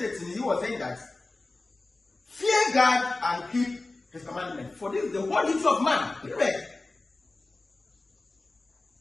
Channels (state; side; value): quieter; right; 3.2 dB